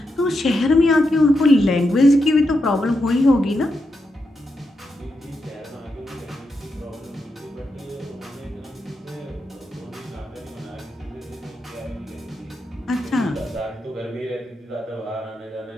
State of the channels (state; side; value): normal; both; correlation 0.85